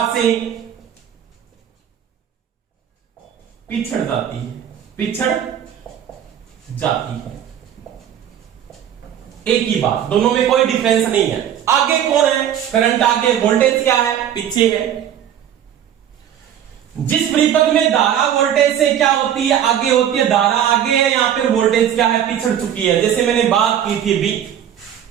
से पिछड़ जाती है, पिछड़ जाती है। एक ही बात, दोनों में कोई डिफरेंस नहीं है। आगे कौन है? करंट आगे, वोल्टेज क्या है? पीछे है। जिस परिपथ में धारा वोल्टेज से क्या होती है? आगे होती है। धारा आगे है, यहां पर वोल्टेज क्या है? पिछड़ चुकी है। जैसे मैंने बात की थी अभी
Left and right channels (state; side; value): quieter; left; 9.9 dB